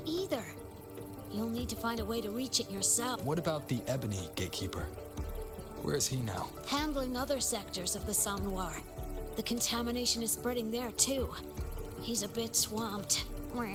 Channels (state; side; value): identical; both; correlation 1.00